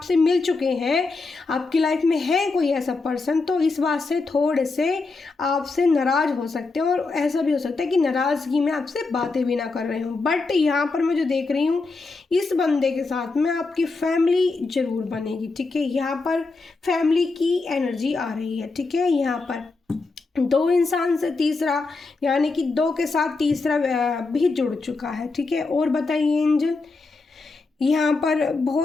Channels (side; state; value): right; quieter; 3.8 dB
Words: मिल चुके हैं, आपकी लाइफ में है कोई ऐसा पर्सन, तो इस बात से थोड़े से आपसे नाराज़ हो सकते हैं, और ऐसा भी हो सकता है कि नाराज़गी में आपसे बातें भी ना कर रहे हो। बट यहाँ पर मैं जो देख रही हूँ, इस बंदे के साथ में आपकी फैमिली ज़रूर बनेगी, ठीक है। यहाँ पर फैमिली की एनर्जी आ रही है, ठीक है। यहाँ पर दो इंसान से तीसरा, यानी कि दो के साथ तीसरा भी जुड़ चुका है, ठीक है। और बताइए एंजल, यहाँ पर